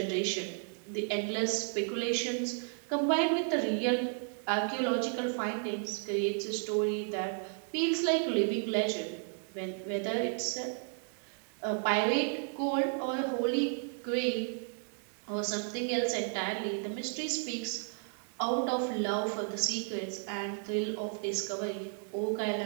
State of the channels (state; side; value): silent; left; 56 dB below the other